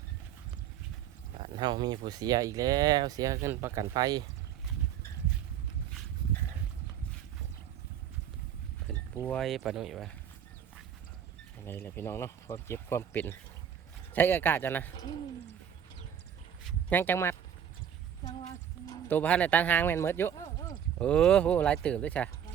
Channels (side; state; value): left; quieter; 9.1 dB